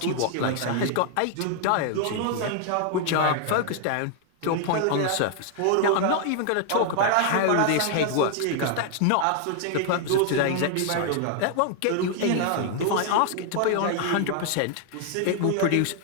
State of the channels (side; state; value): both; different; correlation 0.00